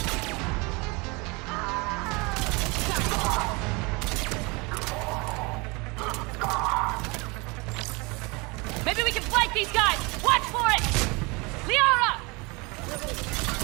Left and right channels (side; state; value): left; quieter; 27.3 dB